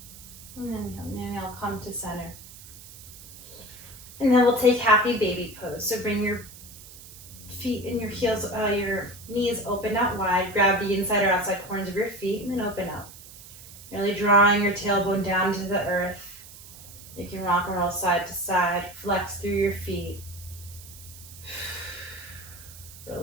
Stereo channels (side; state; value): right; noise; hiss, 17 dB below the sound